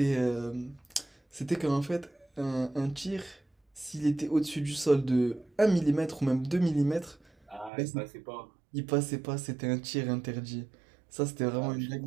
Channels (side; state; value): left; drops out; at 7.7 s